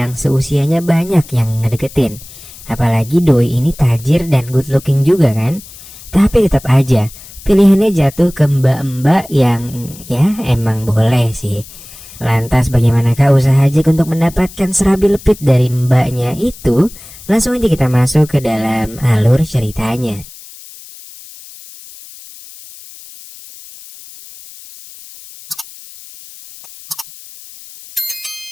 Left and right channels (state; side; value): noise; left; hiss, 18 dB below the sound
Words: seusianya banyak yang ngedeketin. Apalagi doi ini tajir dan good looking juga kan. Tapi tetap aja pilihannya jatuh ke mbak-mbak yang ya emang boleh sih. Lantas bagaimanakah usaha Jack untuk mendapatkan serabi lepit dari mbaknya itu? Langsung aja kita masuk ke dalam alur ceritanya.